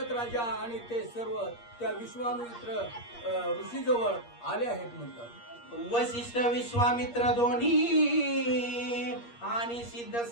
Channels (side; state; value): right; late; 8.5 ms